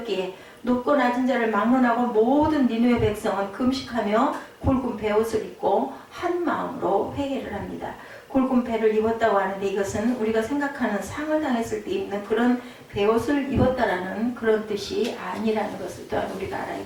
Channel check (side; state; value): both; identical; correlation 1.00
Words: 높고 낮은 자를 막론하고 모든 니느웨 백성은 금식하며 굵은 베옷을 입고 한 마음으로 회개를 합니다. 굵은 배를 입었다고 하는데 이것은 우리가 생각하는 상을 당했을 때 입는 그런 베옷을 입었다라는 그런 뜻이 아니라는 것을 또한 우리가 알아야